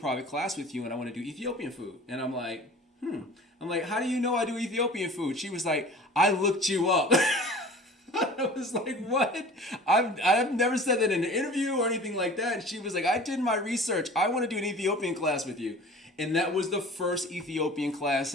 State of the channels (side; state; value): both; normal; correlation 0.43